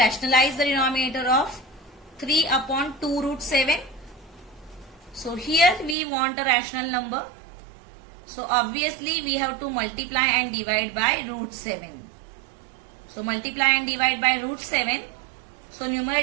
the denominator of 3 upon 2 root 7. So here we want a rational number. So obviously we have to multiply and divide by root 7. So multiply and divide by root 7. So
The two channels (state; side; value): drops out; left; at 6.0 s